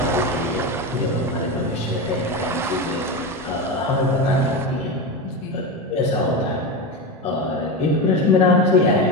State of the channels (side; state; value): both; normal; correlation 0.19